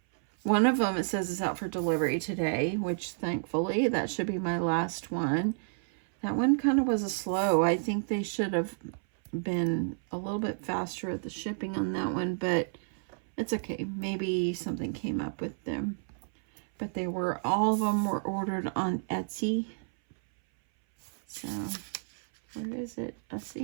one of them, it says it's out for delivery today, which thankfully that should be my last one. That one kind of was a slow. I think they should have been a little bit faster at the shipping on that one, but it's okay. Maybe something came up with them. But they were, all of them were ordered on Etsy. So, where is it? I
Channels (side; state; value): left; silent; 57 dB below the other